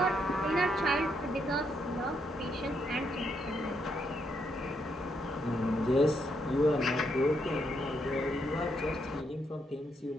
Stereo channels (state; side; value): normal; both; correlation 0.77